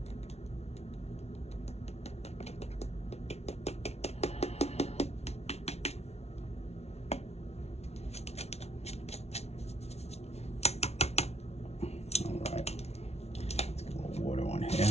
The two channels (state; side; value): late; right; 0.31 ms